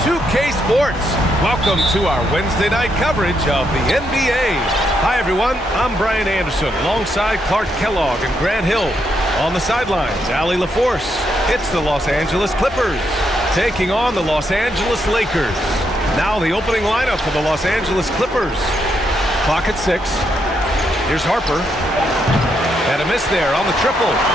Sports. Welcome to our Wednesday night coverage of the NBA. Hi, everyone. I'm Bryant Anderson alongside Clark Kellogg and Grant Hill. On the sidelines, Allie LaForce. It's the Los Angeles Clippers taking on the Los Angeles Lakers. Now the opening lineup for the Los Angeles Clippers. Clock at 6. Here's Harper. And a miss there on the triple.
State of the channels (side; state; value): both; normal; correlation 0.78